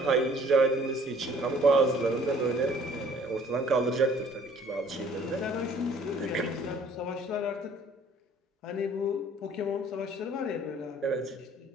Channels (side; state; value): both; normal; correlation 0.56